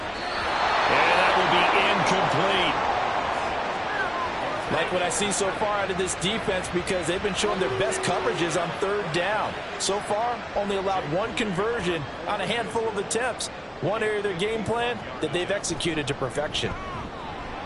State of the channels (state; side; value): identical; both; correlation 1.00